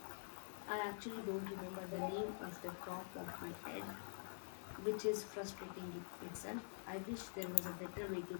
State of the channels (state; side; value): silent; right; digital silence